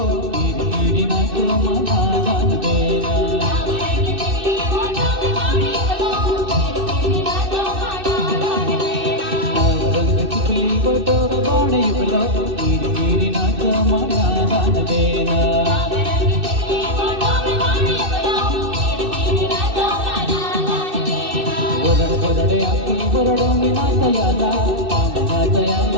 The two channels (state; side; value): late; left; 2.6 ms